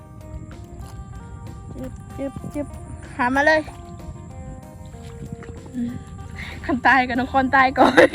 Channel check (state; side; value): identical; both; correlation 1.00